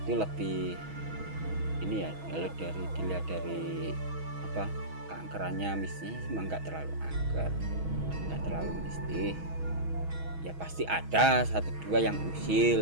lebih ini ya, kalau dilihat dari apa keangkerannya, mistisnya emang nggak terlalu angker, nggak terlalu mistis ya. Pasti ada satu dua yang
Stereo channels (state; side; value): late; left; 6.2 ms